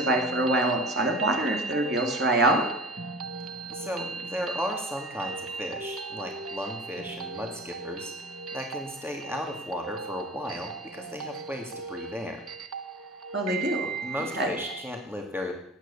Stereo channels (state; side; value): normal; both; correlation 0.36